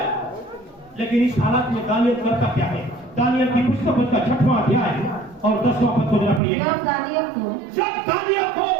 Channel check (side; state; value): left; drops out; at 6.4 s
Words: लेकिन इस हालत में दानियल करता क्या है? दानियल की पुस्तक उसका 6वां अध्याय और 10वां पद को जरा पढ़िएगा। जब दानियल को